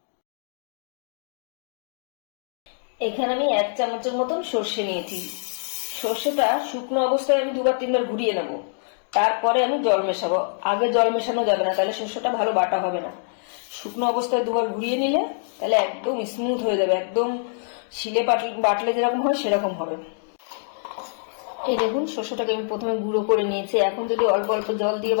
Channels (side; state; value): right; silent; digital silence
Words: এখানে আমি 1 চামচের মতন সর্ষে নিয়েছি। সর্ষেটা শুকনো অবস্থায় আমি 2-3 বার ঘুরিয়ে নেব, তারপরে আমি জল মেশাবো। আগে জল মেশানো যাবে না, তাহলে সর্ষেটা ভালো বাটা হবে না। শুকনো অবস্থায় 2 বার ঘুরিয়ে নিলে তাহলে একদম স্মুথ হয়ে যাবে, একদম শিলে বাটলে যেরকম হয় সেরকম হবে। এই দেখুন, সর্ষেটাকে আমি প্রথমে গুঁড়ো করে নিয়েছি। এখন যদি অল্প অল্প জল দিয়ে